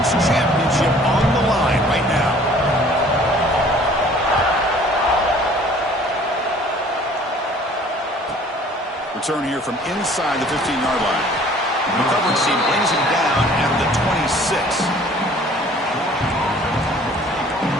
championship on the line right now. Return here from inside the 15-yard line. The coverage team brings him down at the 26.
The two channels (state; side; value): normal; both; correlation 0.53